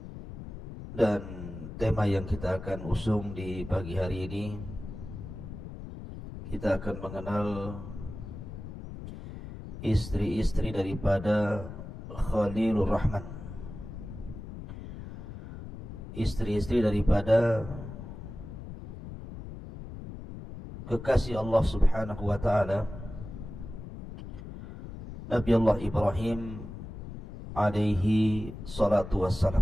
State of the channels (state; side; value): noise; left; rumble, 11 dB below the sound